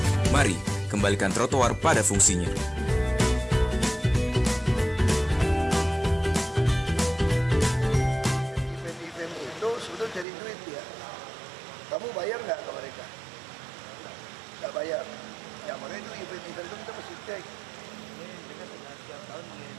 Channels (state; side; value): drops out; left; at 10.2 s